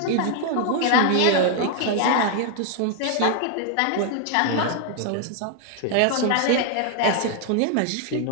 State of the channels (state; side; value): different; both; correlation 0.00